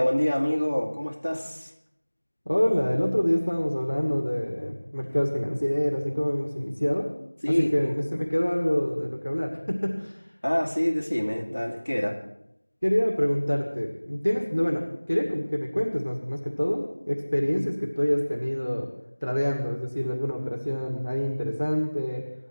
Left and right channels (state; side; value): inverted; both; correlation -1.00